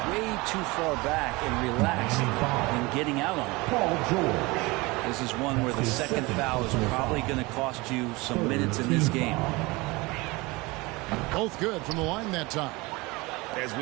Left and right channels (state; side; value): quieter; left; 23.7 dB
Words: way too far back and relaxed in getting out on it. Paul George. This is one where the second foul is probably going to cost you some minutes in this game. Both good from the line that time. As